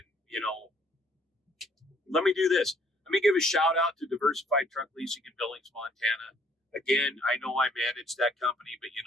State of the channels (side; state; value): both; normal; correlation 0.64